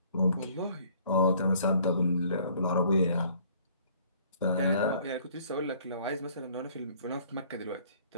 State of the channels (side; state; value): both; inverted; correlation -0.57